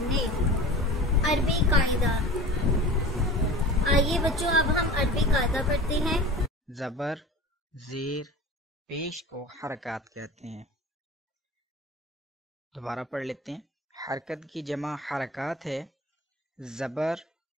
نے. عربی قاعدہ. آئیے بچوں اب ہم عربی قاعدہ پڑھتے ہیں۔ زبر زیر پیش کو حرکات کہتے ہیں۔ دوبارہ پڑھ لیتے ہیں۔ حرکت کی جمع حرکات ہے، زبر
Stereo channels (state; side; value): normal; both; correlation 0.38